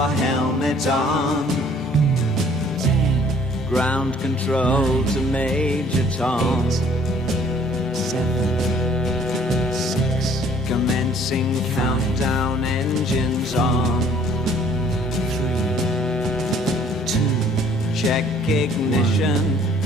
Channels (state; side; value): normal; both; correlation 0.57